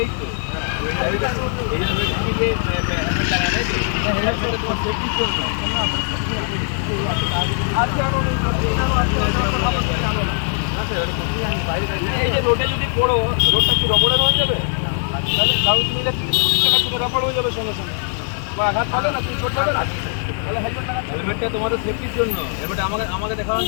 তো এই জন্য যে হেলমেট লাগা নেই তো হেলমেটটা তোমার সেফটির জন্য এই যে রোডে যদি পড়ো রোডটা কি রবরের হয়ে যাবে তাহলে কারণ তুমি রবর হয়ে যাবে সঙ্গে সঙ্গে বা আঘাত পাবে না তুমি চোট পাবে না তাহলে হেলমেটটা তোমাদের সেফটির জন্য হেলমেটটা আমাকে দেখানোর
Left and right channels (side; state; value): right; silent; 62 dB below the other